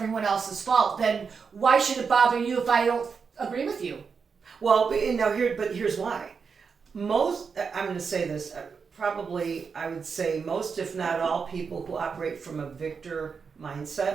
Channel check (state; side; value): quieter; left; 5.7 dB